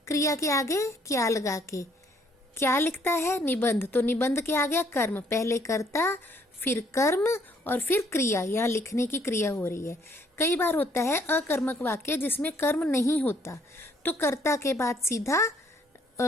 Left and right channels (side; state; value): both; normal; correlation 0.65